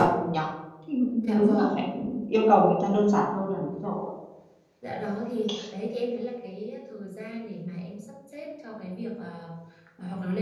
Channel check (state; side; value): identical; both; correlation 1.00